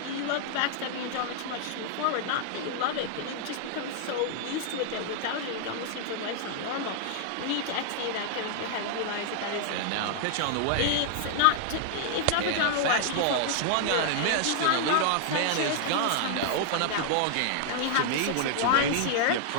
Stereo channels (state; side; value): different; both; correlation -0.01